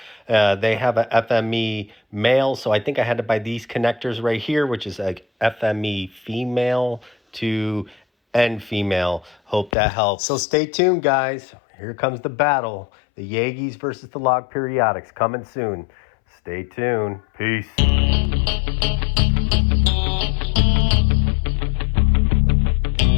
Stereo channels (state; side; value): drops out; right; at 9.7 s